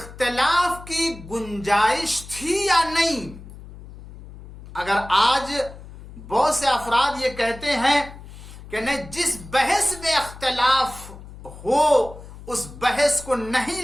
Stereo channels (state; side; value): noise; left; hum, 16 dB below the sound